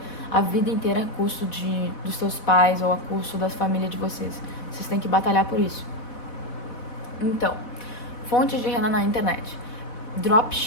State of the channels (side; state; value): right; late; 4.1 ms